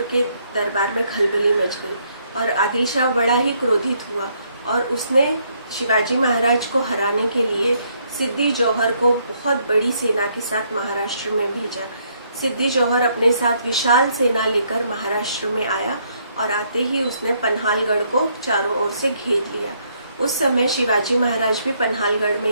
के दरबार में खलबली मच गई और आदिल शाह बड़ा ही क्रोधित हुआ और उसने शिवाजी महाराज को हराने के लिए सिद्दी जौहर को बहुत बड़ी सेना के साथ महाराष्ट्र में भेजा। सिद्दी जौहर अपने साथ विशाल सेना लेकर महाराष्ट्र में आया और आते ही उसने पन्हालगढ़ को चारों ओर से घेर लिया। उस समय शिवाजी महाराज भी पन्हालगढ़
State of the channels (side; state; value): both; inverted; correlation -0.71